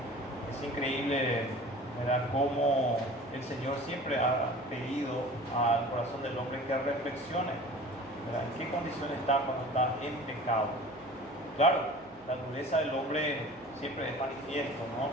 Es increíble, ¿verdad?, cómo el Señor siempre ha pedido al corazón del hombre que reflexione, ¿verdad?, en qué condición está cuando está en pecado. Claro, la dureza del hombre siempre es manifiesto, ¿no?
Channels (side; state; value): right; noise; hum, 28 dB below the sound